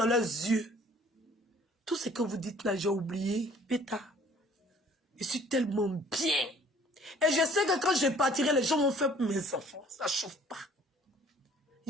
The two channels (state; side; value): normal; both; correlation 0.56